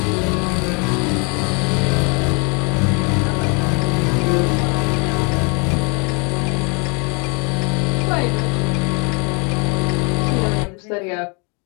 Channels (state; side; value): quieter; right; 33.1 dB